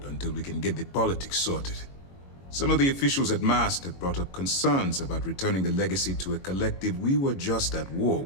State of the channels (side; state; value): right; late; 22 ms